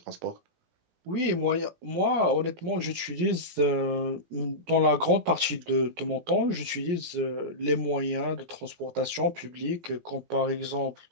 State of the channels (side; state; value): left; late; 17 ms